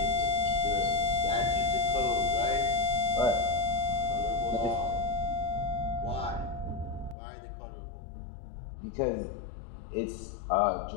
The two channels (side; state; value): right; drops out; at 7.2 s